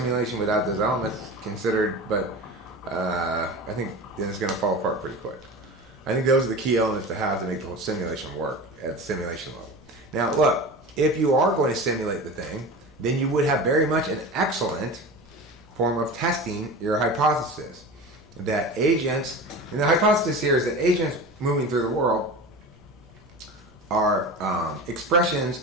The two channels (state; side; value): normal; both; correlation 0.31